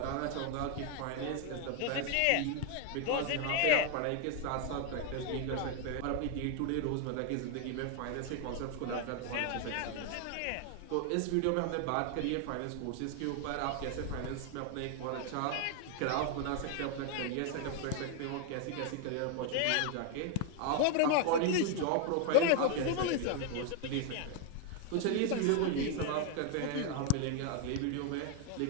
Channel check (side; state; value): both; different; correlation 0.00